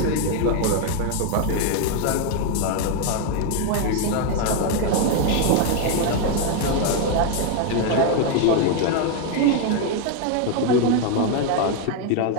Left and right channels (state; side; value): different; both; correlation 0.01